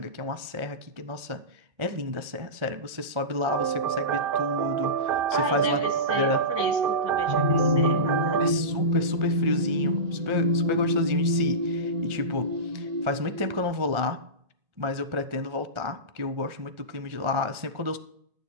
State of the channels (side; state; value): left; late; 1.4 ms